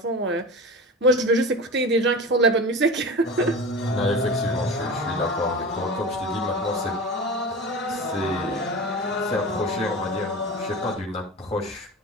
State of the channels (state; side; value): normal; both; correlation 0.31